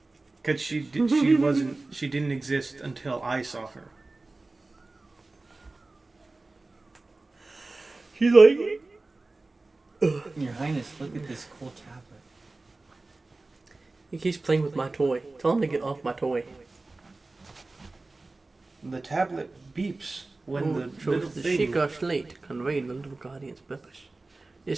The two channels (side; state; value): left; quieter; 3.3 dB